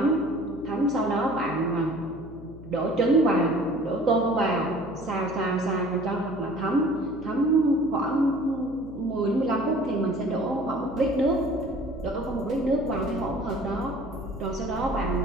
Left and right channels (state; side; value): noise; left; hum, 16 dB below the sound